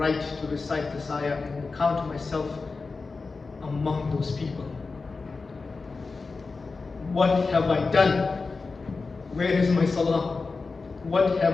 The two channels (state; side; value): quieter; right; 4.2 dB